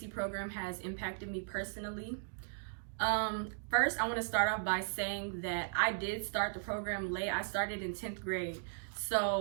program has impacted me personally. First, I want to start off by saying that I did start the program late. I started in 10th grade.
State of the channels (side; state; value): left; silent; digital silence